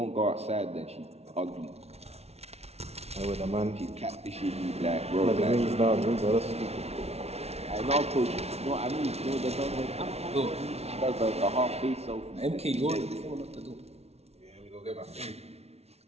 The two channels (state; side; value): late; left; 0.31 ms